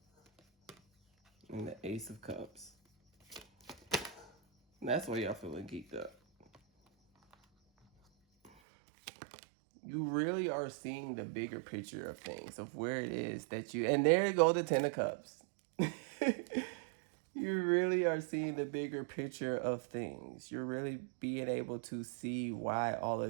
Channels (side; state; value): left; drops out; at 8.5 s